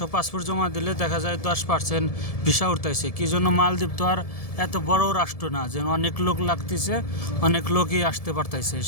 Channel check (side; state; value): right; late; 1.7 ms